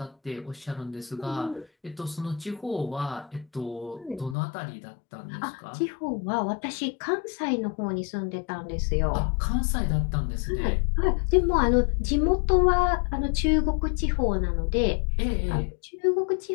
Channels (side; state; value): right; drops out; at 4.4 s